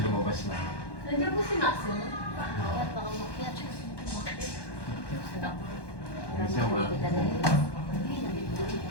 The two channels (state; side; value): late; right; 1.1 ms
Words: lumabas na. Nandiyan po si Maximo. Kaya baka makyat. Isa ma.